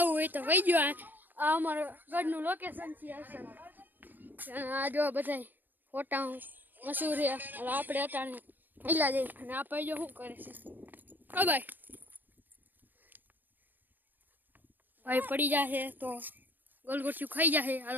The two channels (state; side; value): late; left; 0.088 ms